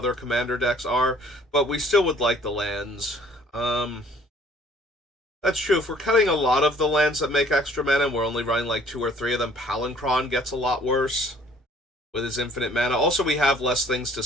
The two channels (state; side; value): normal; both; correlation 0.56